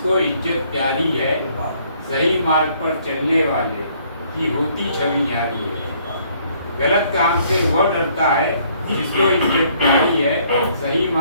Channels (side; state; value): both; inverted; correlation -0.64